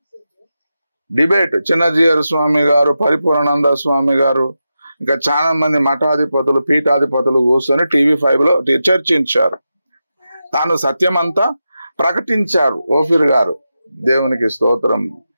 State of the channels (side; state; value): both; inverted; correlation -0.90